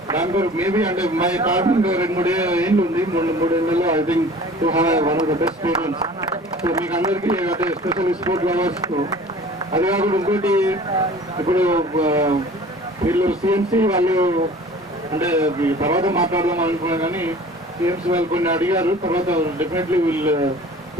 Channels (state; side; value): normal; both; correlation 0.45